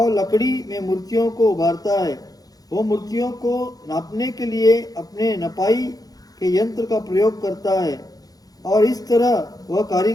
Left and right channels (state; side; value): late; right; 0.18 ms